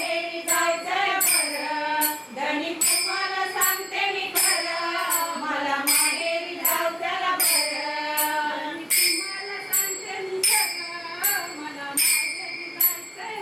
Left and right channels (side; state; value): both; identical; correlation 1.00